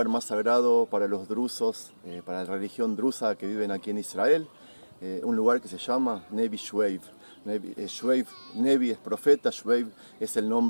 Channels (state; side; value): inverted; both; correlation -1.00